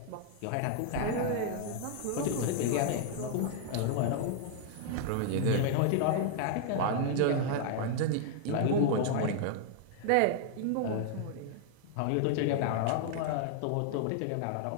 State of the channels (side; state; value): both; different; correlation 0.00